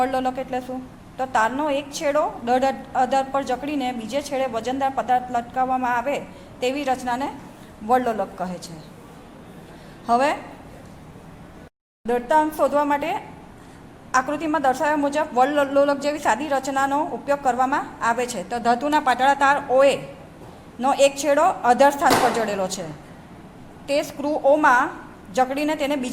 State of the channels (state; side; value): identical; both; correlation 1.00